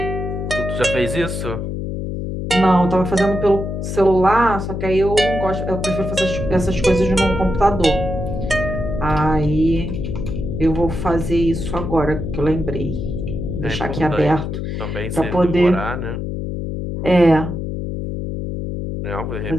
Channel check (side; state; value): left; noise; hum, 4 dB below the sound